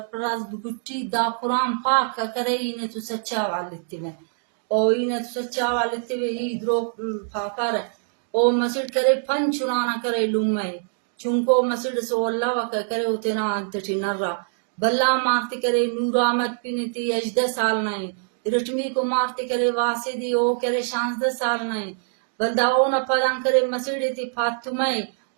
بگٹی دا قرآن پاک کا کرے انہیں تو سچا والتے میں اور انہیں تو سچا والتے میں ہی درو پاپا رہے او مسجد کرے پن چنانا کرے لمے چونکو مسجد سو اللہ وکا کرے اتنا انتٹی نرہ بلا مارتے کرے نور آمد پینتی 18 سال نائیں رٹمی کو مارتے کرے واسدی او کرے 16 سال نائیں بلدا او نہ پدان کرے مسجد تی فاطمہ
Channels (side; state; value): left; silent; digital silence